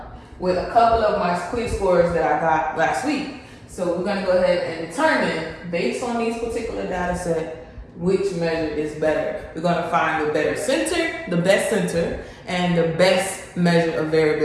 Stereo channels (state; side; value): identical; both; correlation 1.00